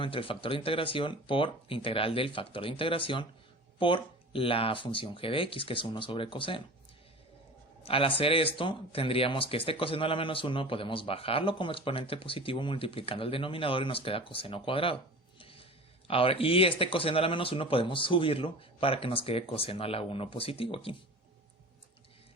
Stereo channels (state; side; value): normal; both; correlation 0.36